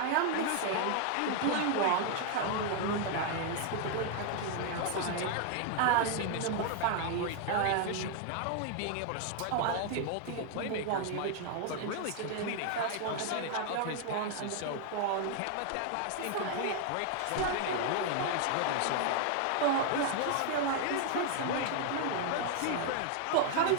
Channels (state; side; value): different; both; correlation 0.00